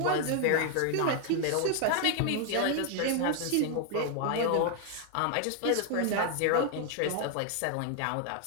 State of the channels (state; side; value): different; both; correlation 0.00